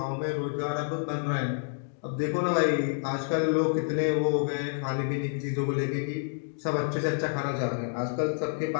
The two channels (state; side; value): silent; right; digital silence